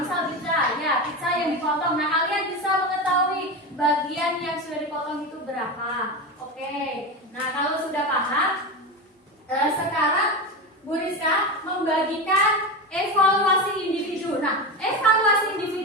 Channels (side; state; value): both; normal; correlation 0.20